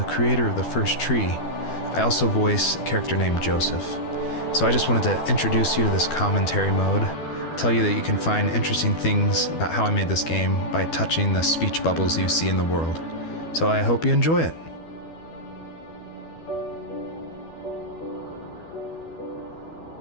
creator of the First Tree. I also voice a character named Joseph. So I just wanted to introduce you to this commentary mode, tell you that you can find interesting things about how I made this game by touching the speech bubbles you see in the world. So I hope you enjoy it.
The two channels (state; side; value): late; right; 12 ms